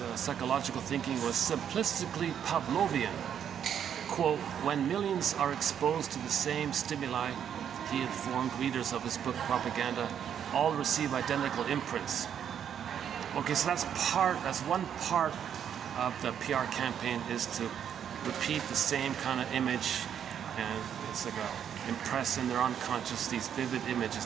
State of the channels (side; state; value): left; quieter; 8.8 dB